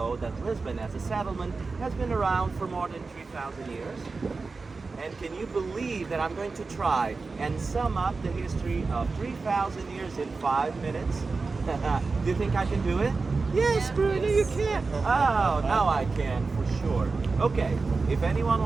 that Lisbon as a settlement has been around for more than 3,000 years? And can you believe that I'm going to try and sum up the history of 3,000 years in 5 minutes? Do you think I can do it? Yes, Bruno, you can. Oh, now I can, for sure. Okay, if anyone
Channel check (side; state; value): left; quieter; 4.1 dB